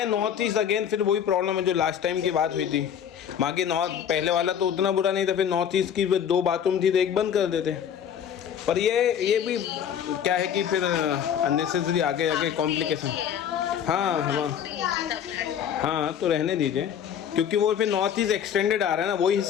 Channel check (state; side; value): quieter; right; 8.8 dB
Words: नॉर्थ ईस्ट अगेन फिर वही प्रॉब्लम है जो लास्ट टाइम की बात हुई थी। बाकी नॉर्थ पहले वाला तो उतना बुरा नहीं था, फिर नॉर्थ ईस्ट की 2 बाथरूम थी तो एक बंद कर देते। पर ये भी क्या है कि फिर अननेसेसरी आगे आगे कॉम्प्लिकेशन। हाँ हाँ हाँ तो रहने दीजिए, क्योंकि वो फिर नॉर्थ ईस्ट एक्सटेंडेड आ रहा है ना, वही